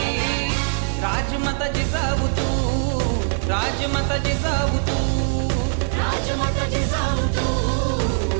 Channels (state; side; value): silent; left; 58 dB below the other